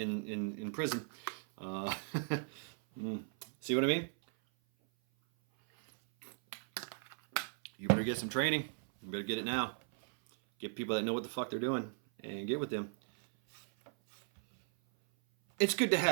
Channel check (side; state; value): left; silent; 53 dB below the other